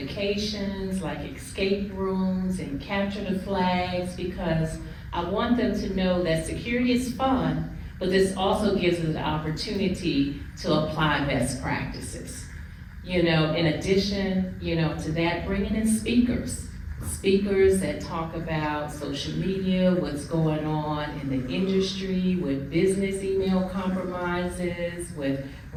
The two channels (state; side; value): identical; both; correlation 1.00